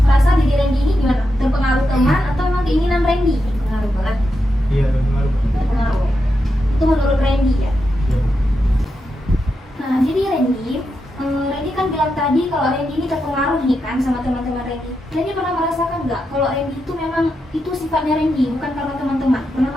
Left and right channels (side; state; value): both; normal; correlation 0.86